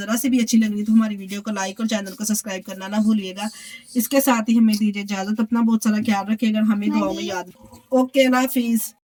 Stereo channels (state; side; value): identical; both; correlation 1.00